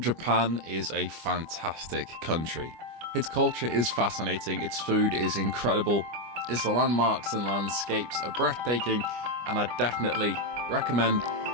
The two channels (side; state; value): left; late; 25 ms